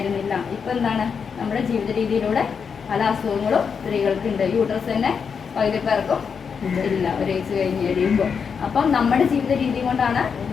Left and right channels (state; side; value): quieter; right; 6.3 dB